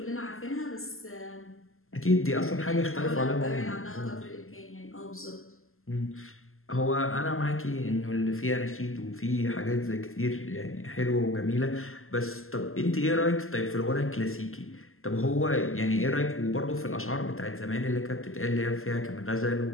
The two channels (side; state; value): right; late; 0.62 ms